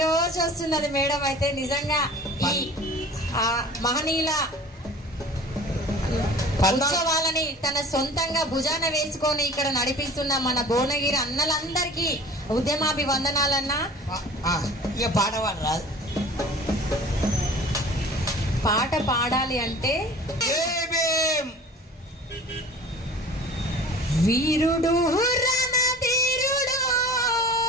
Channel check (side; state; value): both; normal; correlation 0.44